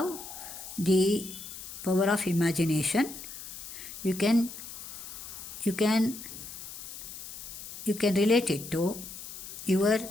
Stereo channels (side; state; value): left; noise; hiss, 11 dB below the sound